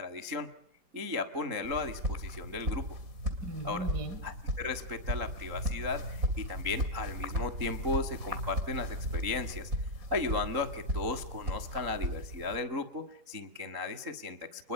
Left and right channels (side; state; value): left; late; 3.9 ms